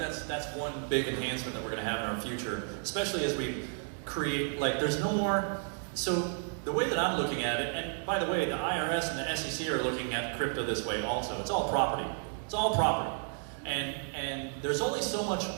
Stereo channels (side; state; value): left; silent; 56 dB below the other